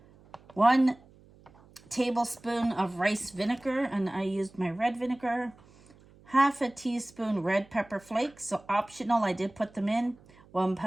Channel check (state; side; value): noise; right; hum, 26 dB below the sound